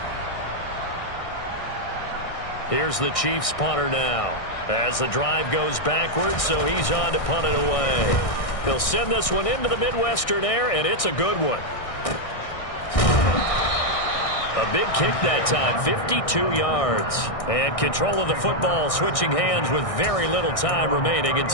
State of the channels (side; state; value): right; late; 1.6 ms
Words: Here's the Chiefs punter now. As the drive goes backwards, so he's on to punt it away. He'll send this one into the Midwestern air, and it's a good one. A big kick that time, 52 yards. And control of the football, switching hands with very little time remaining